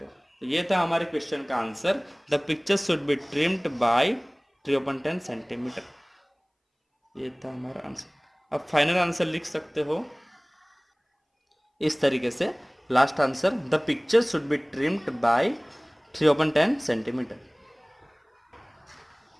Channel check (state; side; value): identical; both; correlation 1.00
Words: तो ये था हमारे क्वेश्चन का answer, the picture should be trimmed by 3/10 centimetre. ये था हमारा आंसर। अब फाइनल आंसर लिख सकते हो इस तरीके से, last answer, the picture should be trimmed by 3/10 centimetre.